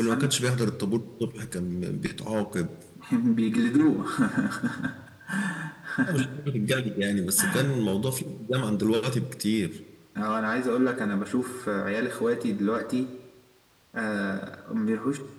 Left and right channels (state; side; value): identical; both; correlation 1.00